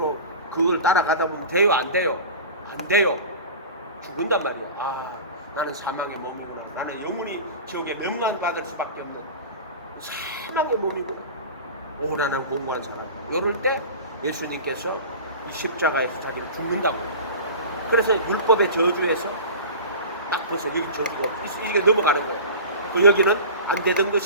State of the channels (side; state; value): both; inverted; correlation -0.34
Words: 그걸 따라가다 보면 돼요? 안 돼요? 안 돼요. 죽은단 말이에요. 아, 나는 사망의 몸이구나. 나는 영원히 지옥에 멸망받을 수밖에 없는 사망의 몸이구나. 오라는 공고한 사람. 이럴 때 예수님께서 이 십자가에서 자기를 죽는다고. 그래서 율법의 저주에서 딱 벌써 여기 저주가 이게 넘어가는 거예요. 그 여기는 안 되던